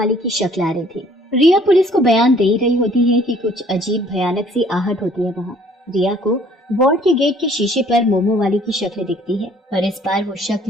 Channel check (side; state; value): both; normal; correlation 0.58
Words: की शक्ल आ रही थी। रिया पुलिस को बयान दे रही होती है कि कुछ अजीब भयानक सी आहट होती है वहाँ। रिया को वार्ड के गेट के शीशे पर मोमो वाली की शक्ल दिखती है, पर इस बार वो